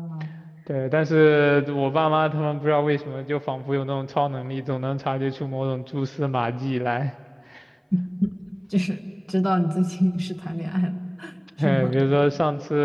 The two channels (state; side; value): identical; both; correlation 1.00